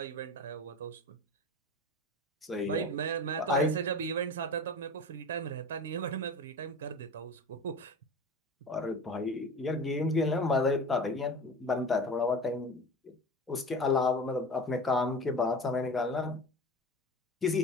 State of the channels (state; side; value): normal; both; correlation 0.34